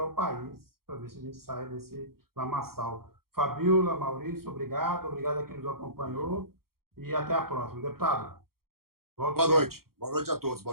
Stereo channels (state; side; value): late; left; 0.94 ms